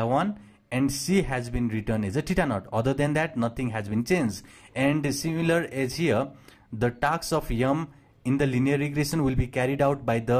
1 and c has been written as a theta naught. Other than that, nothing has been changed. And similar as here, the tasks of m in the linear regression will be carried out by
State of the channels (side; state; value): both; identical; correlation 1.00